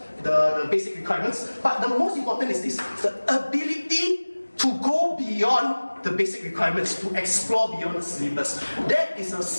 basic requirements. But the most important is this: the ability to go beyond the basic requirements, to explore beyond the syllabus. That is a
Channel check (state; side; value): inverted; both; correlation -1.00